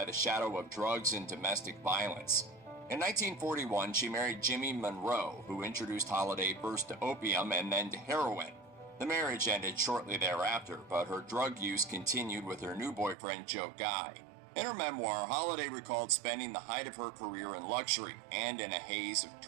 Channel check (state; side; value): drops out; left; at 13.2 s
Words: the shadow of drugs and domestic violence. In 1941, she married Jimmy Monroe, who introduced Holiday first to opium and then to heroin. The marriage ended shortly thereafter, but her drug use continued with her new boyfriend, Joe Guy. In her memoir, Holiday recalled spending the height of her career in luxury and in a haze of